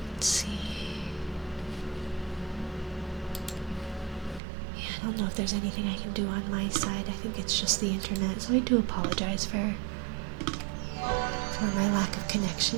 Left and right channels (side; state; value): left; drops out; at 4.4 s